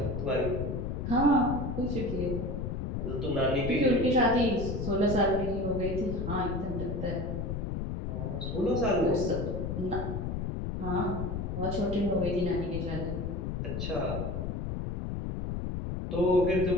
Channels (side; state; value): left; noise; rumble, 3 dB below the sound